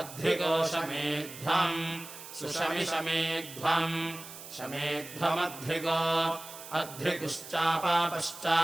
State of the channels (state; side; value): noise; right; hiss, 14 dB below the sound